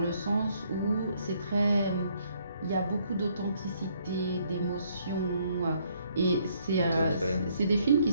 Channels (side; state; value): both; inverted; correlation -0.68